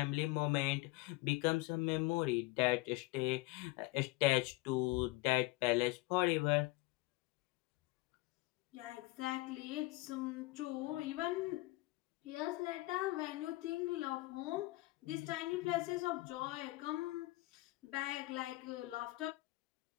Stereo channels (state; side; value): quieter; right; 20.9 dB